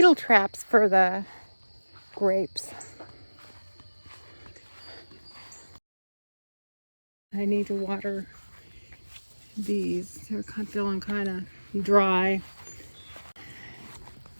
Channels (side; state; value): both; inverted; correlation -1.00